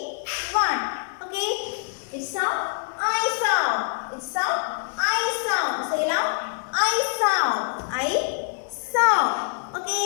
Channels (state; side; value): silent; right; digital silence